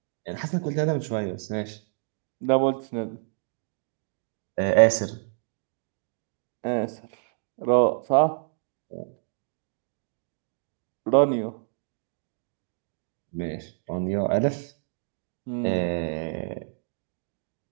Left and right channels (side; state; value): left; silent; digital silence